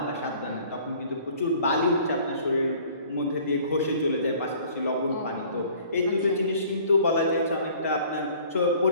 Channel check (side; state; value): both; inverted; correlation -0.53